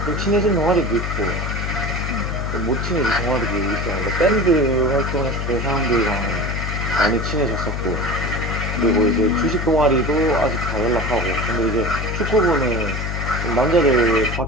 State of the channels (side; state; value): left; noise; hum, 3 dB below the sound